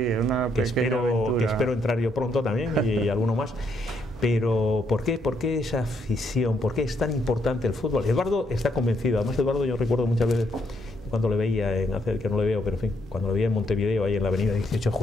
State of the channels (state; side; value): normal; both; correlation 0.74